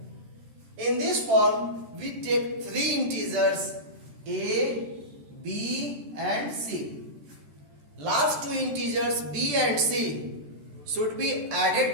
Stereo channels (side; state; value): left; late; 13 ms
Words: In this form, we take 3 integers a, b and c. Last 2 integers b and c should be